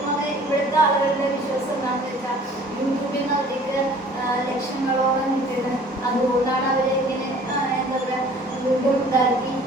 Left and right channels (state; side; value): normal; both; correlation 0.51